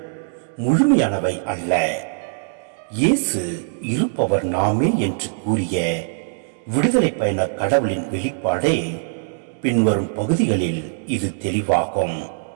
முழுமையானவை அல்ல. இயேசு இருப்பவர் நாமே என்று கூறிய விடுதலை பயண கடவுளின் வெளிப்பாடே பின்வரும் பகுதிகளில் இது தெளிவாகும்.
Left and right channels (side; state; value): left; silent; digital silence